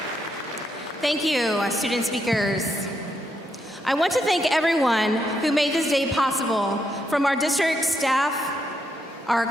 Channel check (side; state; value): both; normal; correlation 0.79